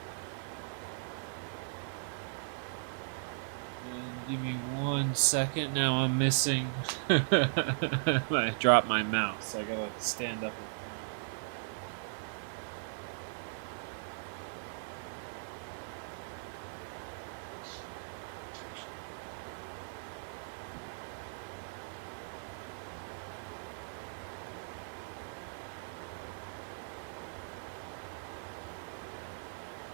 And give me 1 second. Now I'm missing. I dropped my mouse. I gotta stand up and find it.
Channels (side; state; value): left; silent; 53 dB below the other